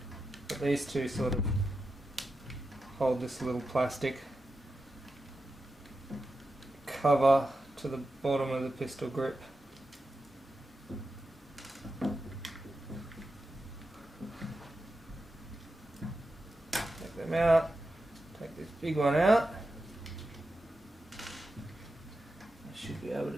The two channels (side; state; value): both; normal; correlation 0.90